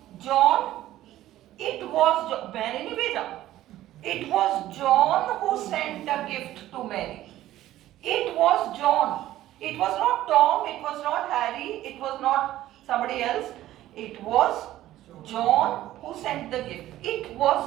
John, Mary ने भेजा, it was John who sent a gift to Mary, it was John, it was not Tom, it was not Harry, it was not somebody else, it was John who sent the gift, it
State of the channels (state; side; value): quieter; left; 14.2 dB